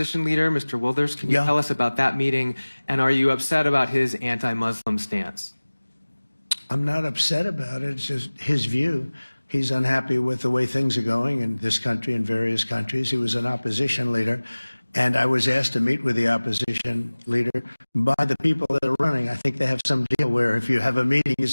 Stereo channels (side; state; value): both; inverted; correlation -1.00